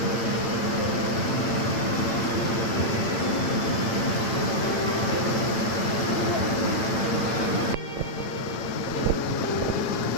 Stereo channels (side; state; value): right; late; 8.9 ms